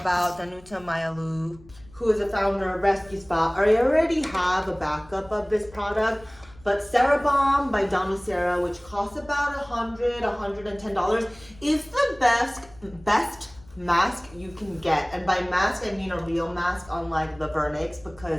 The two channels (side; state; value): left; noise; rumble, 24 dB below the sound